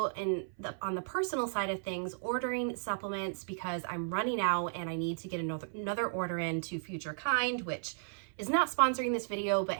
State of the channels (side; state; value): left; silent; 55 dB below the other